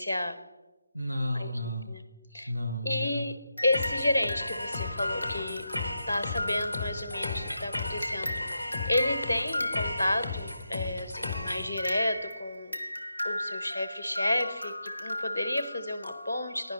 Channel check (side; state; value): both; inverted; correlation -0.86